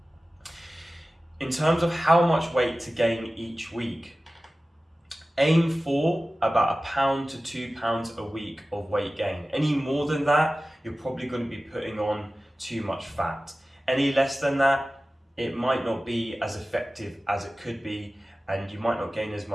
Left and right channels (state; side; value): normal; both; correlation 0.96